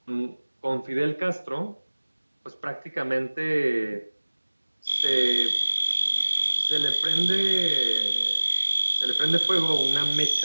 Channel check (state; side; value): inverted; both; correlation -1.00